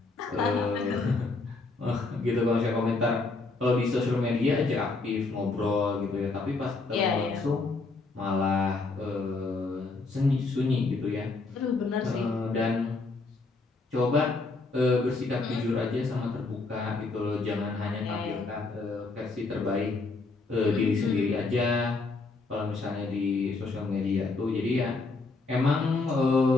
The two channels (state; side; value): quieter; right; 3.7 dB